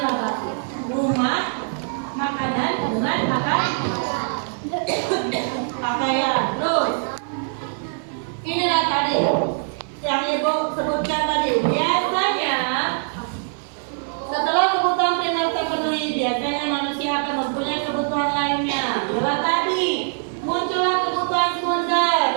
rumah, makanan, dengan makan, pakaian. Terus, inilah tadi yang ibu sebutkan tadi. Biasanya setelah kebutuhan primer terpenuhi, biasanya manusia akan mempunyai kebutuhan lainnya. Itulah tadi muncullah kebutuhan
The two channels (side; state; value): left; silent; 57 dB below the other